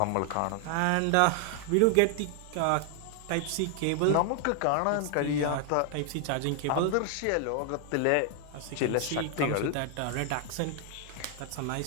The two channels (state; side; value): different; both; correlation 0.00